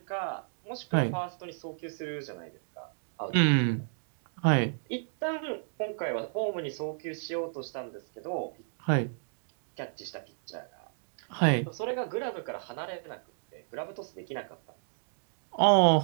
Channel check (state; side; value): silent; left; digital silence